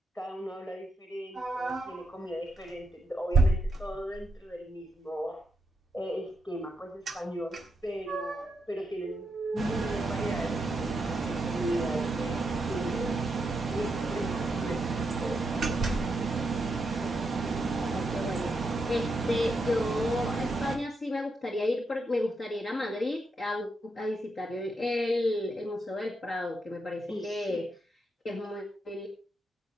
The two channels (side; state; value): both; normal; correlation 0.82